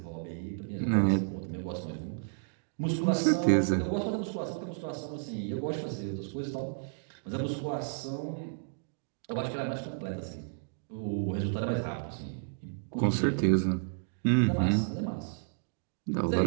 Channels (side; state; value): left; silent; digital silence